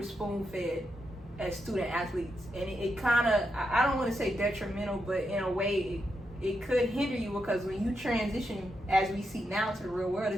spoon fed as student athletes, and it kind of, I don't want to say detrimental, but in a way it could hinder you, because when you transition, as we see now, to the real world,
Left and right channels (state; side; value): normal; both; correlation 0.84